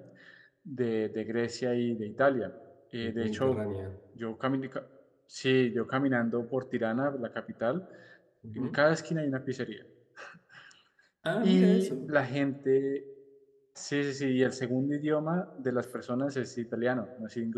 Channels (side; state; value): both; identical; correlation 1.00